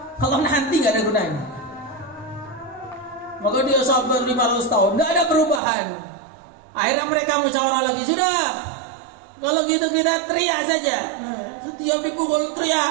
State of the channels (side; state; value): left; drops out; at 5.6 s